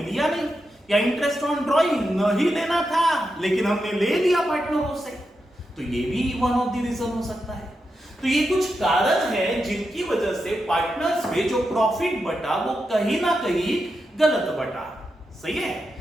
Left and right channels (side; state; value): both; normal; correlation 0.87